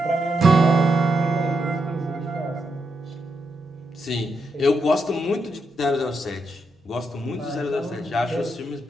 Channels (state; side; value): normal; both; correlation 0.82